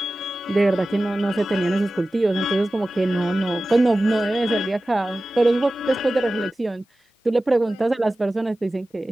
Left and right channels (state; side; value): normal; both; correlation 0.96